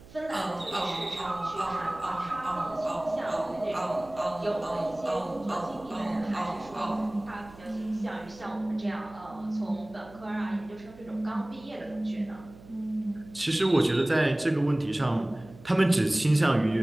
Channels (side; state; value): right; noise; hum, 20 dB below the sound